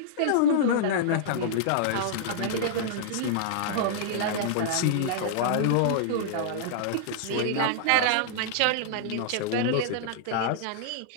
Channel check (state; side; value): different; both; correlation -0.01